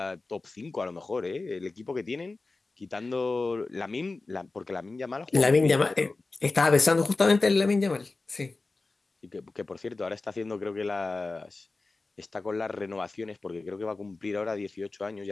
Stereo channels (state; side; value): quieter; right; 3.5 dB